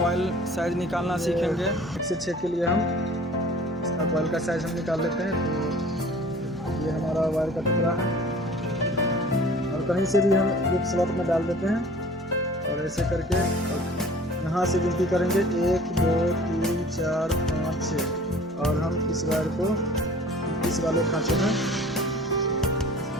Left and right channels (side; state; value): both; normal; correlation 0.47